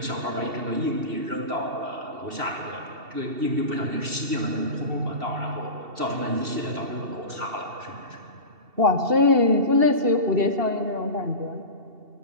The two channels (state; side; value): late; left; 2.7 ms